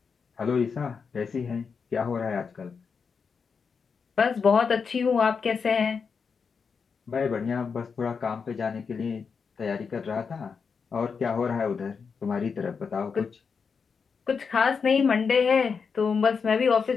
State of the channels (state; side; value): quieter; right; 5.7 dB